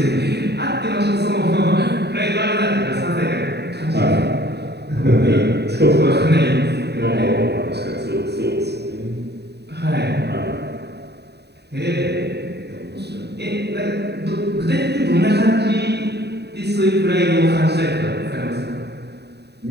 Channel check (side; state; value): left; late; 0.48 ms